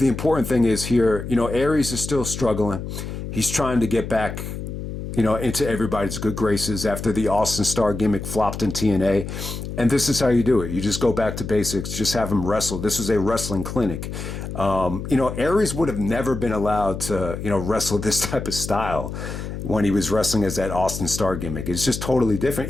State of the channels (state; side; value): noise; left; hum, 7 dB below the sound